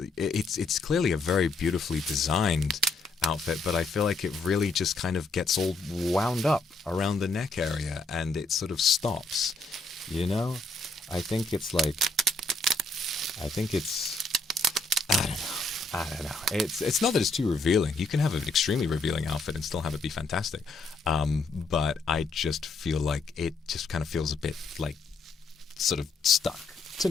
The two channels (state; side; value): quieter; right; 3.4 dB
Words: clearly a very beautifully designed outfit, but I feel like it really just kind of gets all wound up around the neck area and it sort of stops. I think it's I don't know. It's not that it's too revealing. You can have an extremely revealing outfit and still have it be fantastic. But I just feel like it just kind of feels a bit like sort of stuck to